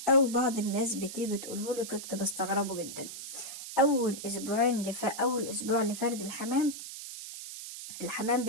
أو بعض الناس بتيجي تقولهولي كنت بستغربه جدا. اول اسبوع لفرد الحمام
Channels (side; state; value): right; noise; hiss, 10 dB below the sound